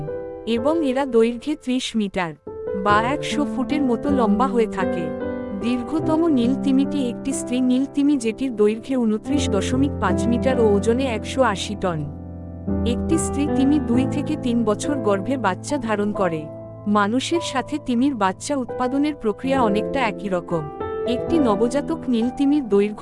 এবং এরা দৈর্ঘ্যে ৩০ মিটার বা ১০০ ফুটের মতো লম্বা হয়ে থাকে। দীর্ঘতম নীল তিমিটি একটি স্ত্রী নীল তিমি, যেটির দৈর্ঘ্যে ২৯.৫ মিটার ও ওজনে ১৮০ টন। একটি স্ত্রী তিমি ২ থেকে ৩ বছর গর্ভে বাচ্চা ধারণ করে। মানুষের সাথে তিমির বাচ্চা উৎপাদনের প্রক্রিয়া অনেকটা একই রকম। একটি নবজাতক নীল তিমির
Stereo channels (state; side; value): identical; both; correlation 1.00